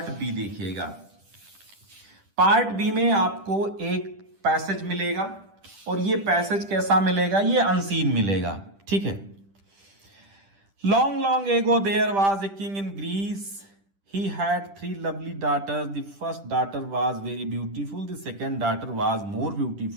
बी देखिएगा। पार्ट बी में आपको एक पैसेज मिलेगा और ये पैसेज कैसा मिलेगा, ये अनसीन मिलेगा, ठीक है। Long long ago there was a king in Greece, he had 3 lovely daughters. The first daughter was very beautiful, the second daughter was more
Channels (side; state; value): left; late; 10 ms